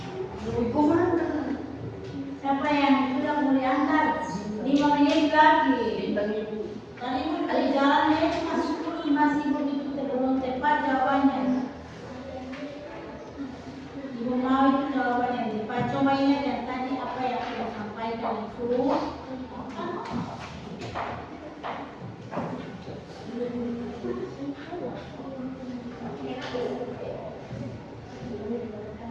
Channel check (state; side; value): identical; both; correlation 1.00